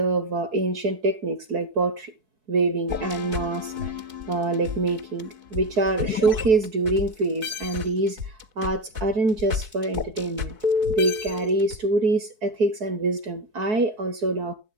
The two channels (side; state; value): left; late; 4.6 ms